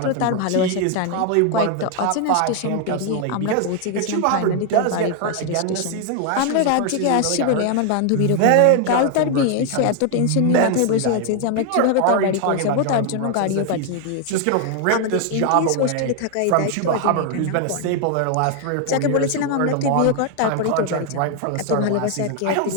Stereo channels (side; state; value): both; different; correlation 0.00